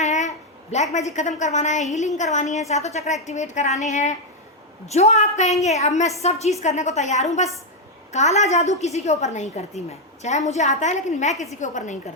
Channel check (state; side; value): normal; both; correlation 0.02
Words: ब्लैक मैजिक ख़त्म करवाना है, हीलिंग करवानी है, सातों चक्र एक्टिवेट कराने हैं, जो आप कहेंगे अब मैं सब चीज़ करने को तैयार हूँ। बस काला जादू किसी के ऊपर नहीं करती मैं, चाहे मुझे आता है लेकिन मैं किसी के ऊपर नहीं